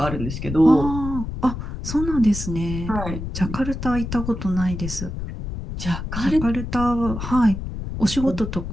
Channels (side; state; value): left; noise; rumble, 6 dB below the sound